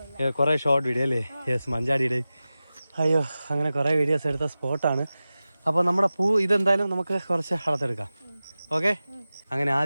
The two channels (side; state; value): both; inverted; correlation -0.95